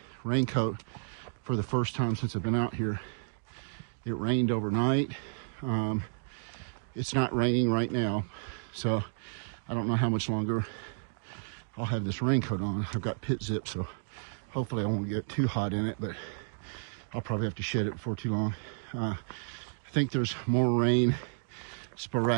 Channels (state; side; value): silent; left; digital silence